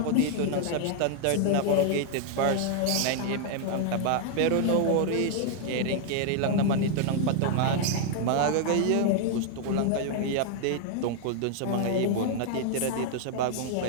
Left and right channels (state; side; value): different; both; correlation -0.01